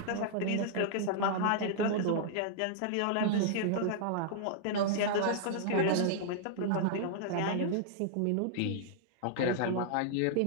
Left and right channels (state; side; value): different; both; correlation -0.01